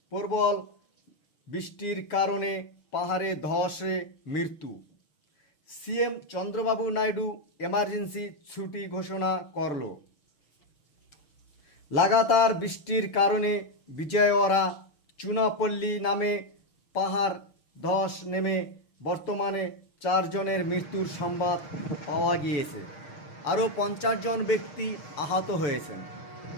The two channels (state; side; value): late; right; 6.8 ms